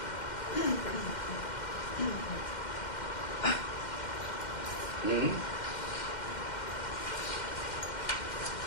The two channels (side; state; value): right; late; 2.1 ms